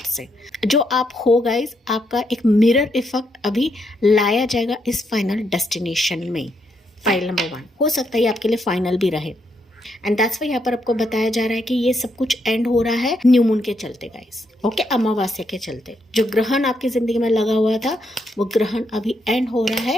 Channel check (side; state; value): both; normal; correlation 0.78